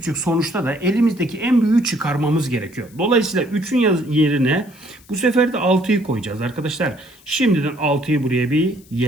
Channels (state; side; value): noise; left; hiss, 27 dB below the sound